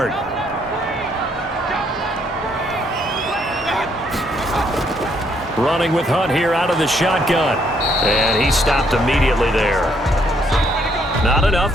Running with Hunt here out of the shotgun. And he stopped immediately there. Not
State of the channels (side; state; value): both; normal; correlation 0.70